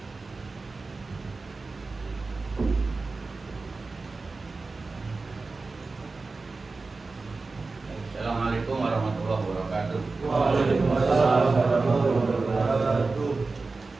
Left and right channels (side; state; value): left; quieter; 3.8 dB